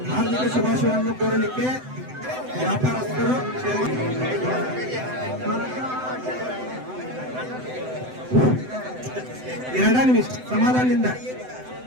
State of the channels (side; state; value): left; late; 7.9 ms